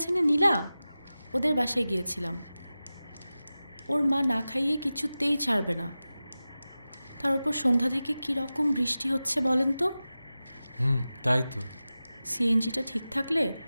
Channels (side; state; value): both; inverted; correlation -0.95